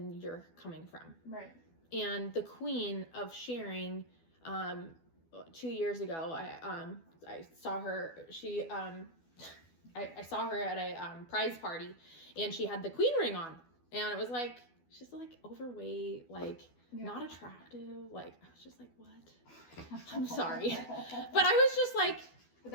you're coming from. Right. And the queen of sharing, 2 years ago, I saw her, I saw her at a prize party and she had the queen ring on and it was like, she's like overweight, like not attractive. Like, I was just like, what? I'm sorry. But I was just like, but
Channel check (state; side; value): late; right; 12 ms